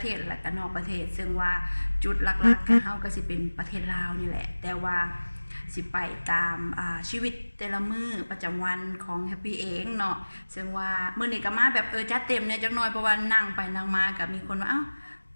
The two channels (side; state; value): both; inverted; correlation -1.00